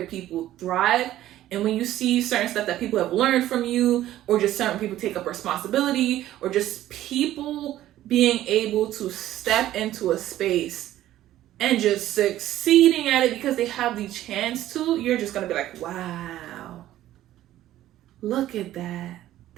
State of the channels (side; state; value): left; quieter; 13.7 dB